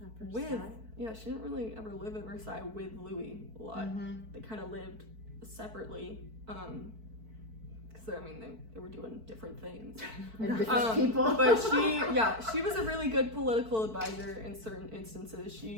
with Versailles. she didn't really ever live at Versailles with Louis a lot. They kind of lived separately because they were doing different things. And different people. But she was a really good political advisor in certain instances.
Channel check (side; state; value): left; late; 4.5 ms